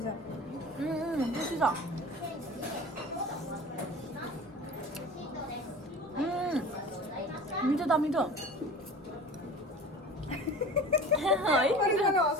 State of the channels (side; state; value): both; normal; correlation 0.38